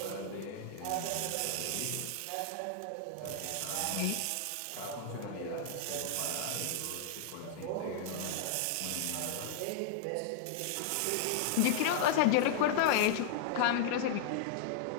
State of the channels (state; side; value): different; both; correlation -0.01